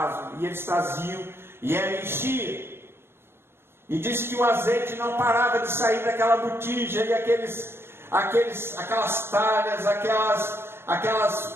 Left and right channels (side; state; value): left; late; 0.12 ms